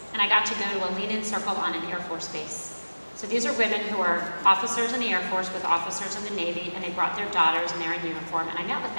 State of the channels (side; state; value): both; inverted; correlation -1.00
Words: and I got to go to a lean-in circle on an Air Force base. So these are women who are officers in the Air Force with officers in the Navy, and they brought their daughters, and they're in uniform, and I met with